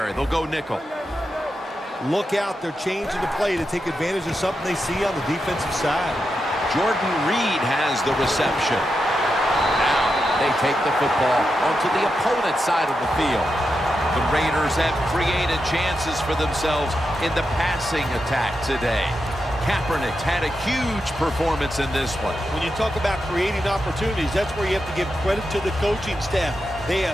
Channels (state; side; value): normal; both; correlation 0.87